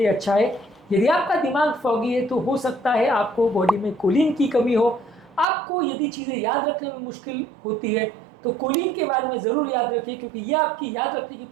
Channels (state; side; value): drops out; left; at 5.5 s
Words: अच्छा है। यदि आपका दिमाग फॉगी है तो हो सकता है आपको बॉडी में कोलिन की कमी हो। आपको यदि चीज़ें याद रखने में मुश्किल होती है तो कोलिन के बारे में ज़रूर याद रखिए, क्योंकि यह आपकी याद रखने की